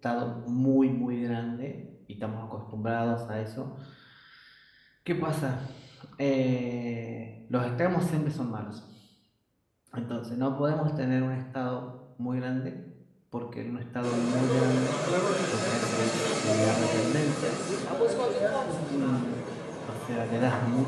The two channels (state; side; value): identical; both; correlation 1.00